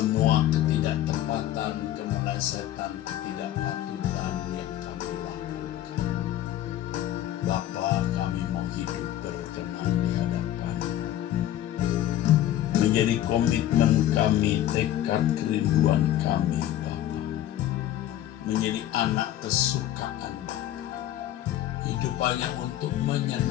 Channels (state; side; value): quieter; right; 12.7 dB